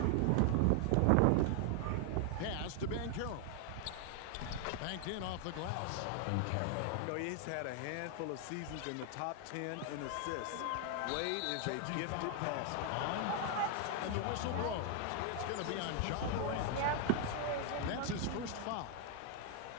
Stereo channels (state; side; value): different; both; correlation 0.00